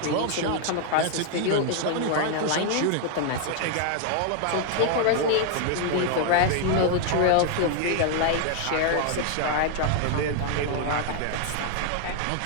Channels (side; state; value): both; different; correlation 0.00